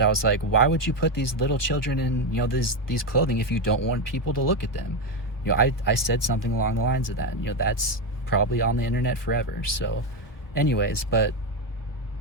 I was like, why would you put these little children in, you know, these clothing if you don't want people to look at them? You know, I said something along the lines of that. You know, that's probably on the internet forever. So anyways, like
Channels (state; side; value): late; right; 1.2 ms